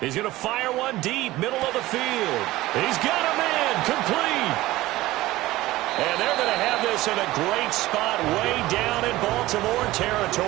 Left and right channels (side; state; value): left; quieter; 17.4 dB